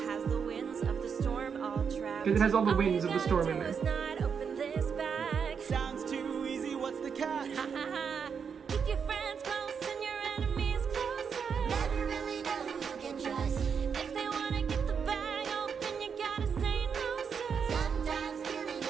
has the winds of the storm all trapped. It has all the All winds you of the gotta storm do in there. is not open this bag. Sounds too easy, what's the catch? Ha ha ha. Keep your friends close and your enemies closer. Never really know who you can trust. If they wanna get the bag open, you gotta say no, sir. Sometimes killing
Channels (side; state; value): left; quieter; 6.6 dB